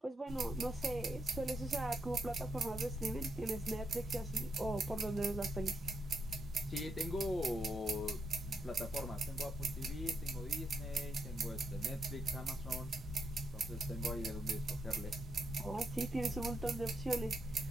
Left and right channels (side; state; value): both; normal; correlation 0.80